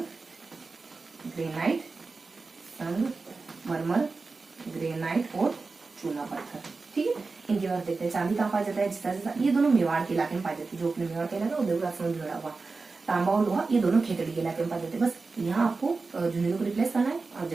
ग्रेनाइट और चूना पत्थर। ठीक है, इनके बाद देखते हैं चांदी कहाँ पाया जाता है? जिसा ये दोनों मेवाड़ के इलाके में पाई जाती है, जो अपने मेवाड़ के इलाका उदयपुर राजसमंद जुड़ा हुआ। तांबा और लोहा ये दोनों खेतड़ी के इलाके में पाए जाते हैं। बस यहाँ आपको झुंझुनू को रिप्लेस करना है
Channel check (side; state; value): left; quieter; 4.0 dB